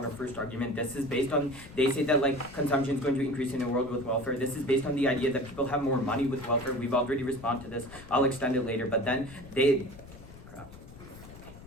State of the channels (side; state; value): left; noise; rumble, 18 dB below the sound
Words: our first argument. This is based on, they say that like consumption is going to increase in a world with welfare. This is based on the idea that people have more money with welfare. We've already responded to this. I'll extend it later, but then crap.